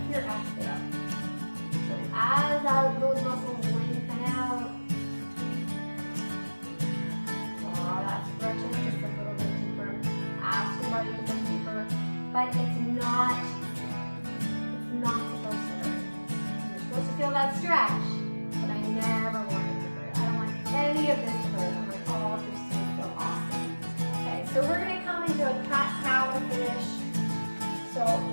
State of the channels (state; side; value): inverted; both; correlation -1.00